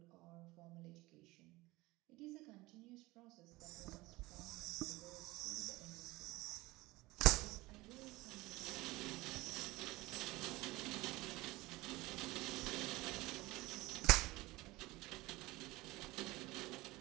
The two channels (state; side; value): quieter; left; 20.6 dB